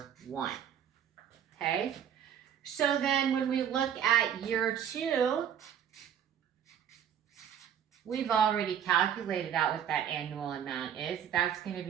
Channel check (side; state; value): left; quieter; 9.1 dB